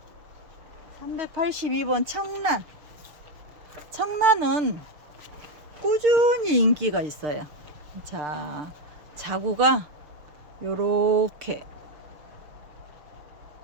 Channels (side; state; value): left; late; 6.5 ms